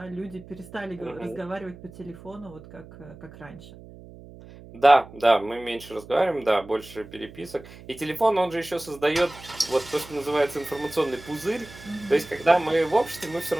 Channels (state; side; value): noise; right; hum, 18 dB below the sound